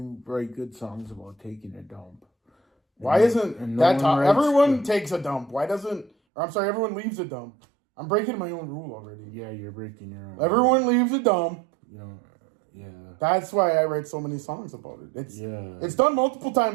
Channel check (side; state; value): left; drops out; at 6.1 s